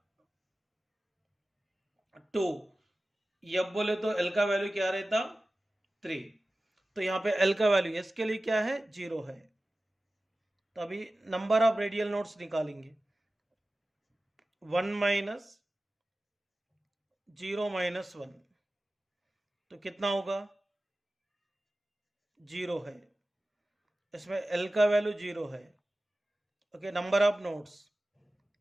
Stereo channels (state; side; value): normal; both; correlation 0.96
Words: 2, f बोले तो l का वैल्यू क्या रहता 3। तो यहाँ पे l का वैल्यू s के लिए क्या है 0 है। तो अभी नंबर ऑफ रेडियल नोड्स निकालेंगे, 1 माइनस 0 माइनस 1 तो कितना होगा 0 है। इसमें l का वैल्यू 0 है, ओके। नंबर ऑफ नोड्स